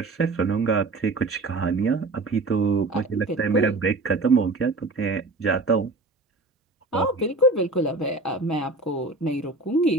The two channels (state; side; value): quieter; left; 3.2 dB